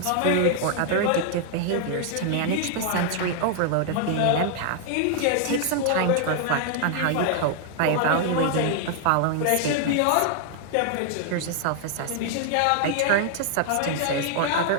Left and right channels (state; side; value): different; both; correlation 0.00